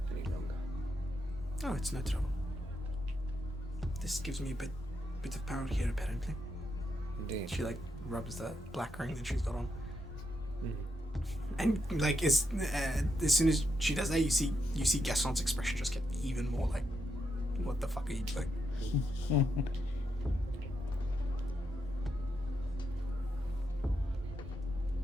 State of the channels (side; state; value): both; normal; correlation 0.82